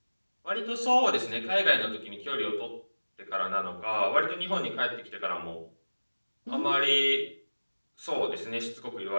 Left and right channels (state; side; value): inverted; both; correlation -1.00